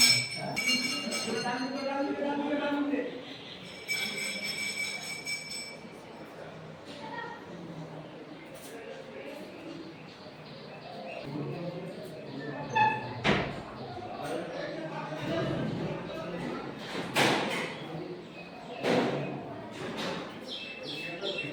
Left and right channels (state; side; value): identical; both; correlation 1.00